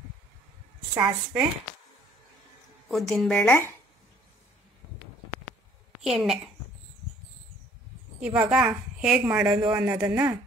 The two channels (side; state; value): both; normal; correlation 0.58